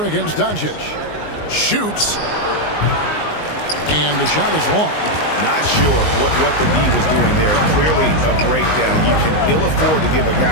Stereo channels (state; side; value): late; right; 19 ms